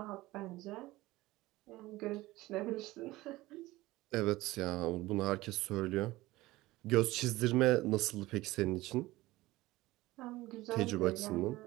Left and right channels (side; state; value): left; quieter; 18.6 dB